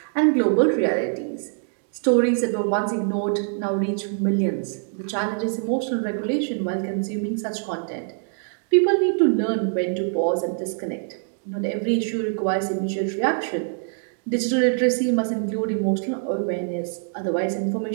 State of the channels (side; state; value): left; silent; 62 dB below the other